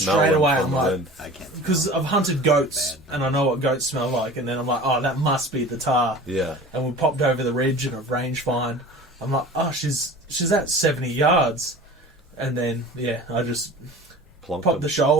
straight them away. from I'm the like, wind. because I've hunted goats and I know what goats smell like, and then I'm like, oh, that must be the Tahr. Yeah. And we popped over the ridge and a range find. I'm like, oh, she's at 70 yards. And then, I just popped the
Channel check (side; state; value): both; normal; correlation 0.39